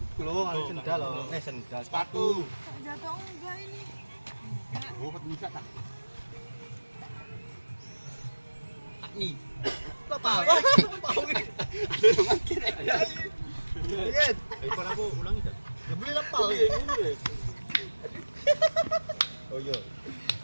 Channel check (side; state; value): both; inverted; correlation -1.00